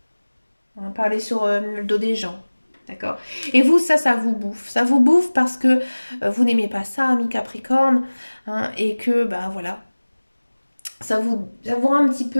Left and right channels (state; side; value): inverted; both; correlation -1.00